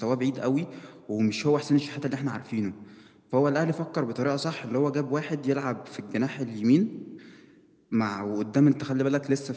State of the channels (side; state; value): both; identical; correlation 1.00